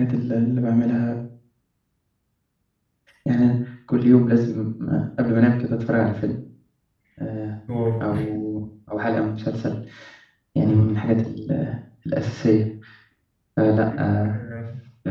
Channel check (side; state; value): both; identical; correlation 1.00